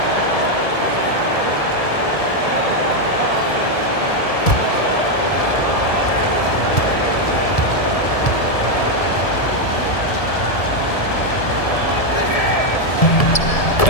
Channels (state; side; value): late; right; 1.7 ms